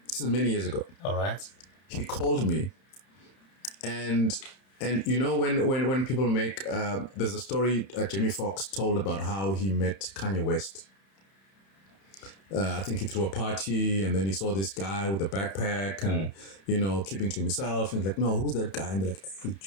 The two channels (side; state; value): right; late; 31 ms